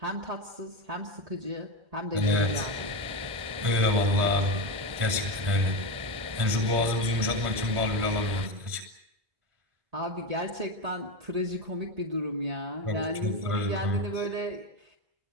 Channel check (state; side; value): late; left; 1.5 ms